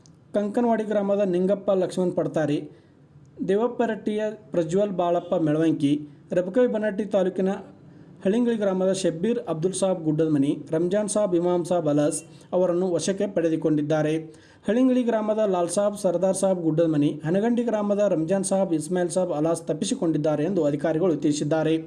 ಕಂಕನವಾಡಿ ಗ್ರಾಮದ ನಿಂಗಪ್ಪ ಲಕ್ಷ್ಮಣ್ ಪಡ್ತಾರೆ, ದೇವಪ್ಪರಟ್ಟಿಯ ಪ್ರಜ್ವಲ್ ಬಾಳಪ್ಪ ಮೆಳವಂಕಿ, ರಬಕವಿ ಬನಹಟ್ಟಿ ತಾಲೂಕಿನ ಹಳಿಂಗಳಿ ಗ್ರಾಮದ ಶಬ್ಬೀರ್ ಅಬ್ದುಲ್ ಸಾಬ್ ಗುಡ್ಡದಮನಿ, ರಂಜಾನ್ ಸಾಬ್ ಇಮಾಮ್ ಸಾಬ್ ಅಲಸ್ ಅವರನ್ನು ವಶಕ್ಕೆ ಪಡೆದುಕೊಂಡಿದ್ದಾರೆ. ಹಳಿಂಗಳಿ ಗ್ರಾಮದ ಲಾಲ್ ಸಾಬ್ ಸರ್ದಾರ್ ಸಾಬ್ ಗುಡ್ಡದಮನಿ, ಹನಗಂಡಿ ಗ್ರಾಮದ ರಂಜಾನ್ ಸಾಬ್ ಇಸ್ಮಾಯಿಲ್ ಸಾಬ್ ಅಲಾಸ್ ತಪ್ಪಿಸಿಕೊಂಡಿದ್ದಾರೆ ಎಂದು ಅಧಿಕಾರಿಗಳು ತಿಳಿಸಿದ್ದಾರೆ.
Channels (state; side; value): identical; both; correlation 1.00